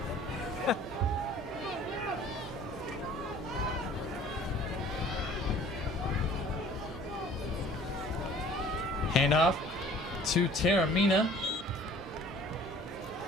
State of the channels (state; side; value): normal; both; correlation 0.50